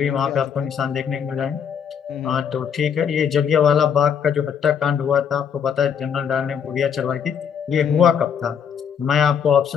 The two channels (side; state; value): right; quieter; 7.5 dB